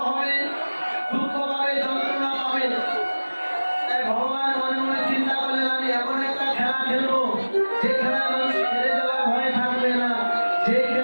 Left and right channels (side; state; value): both; inverted; correlation -1.00